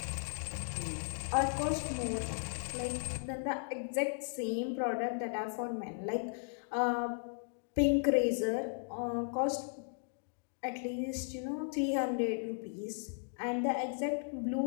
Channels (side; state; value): right; silent; digital silence